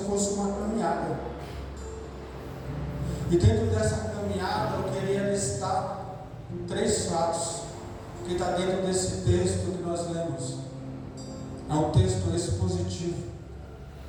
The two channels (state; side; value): identical; both; correlation 1.00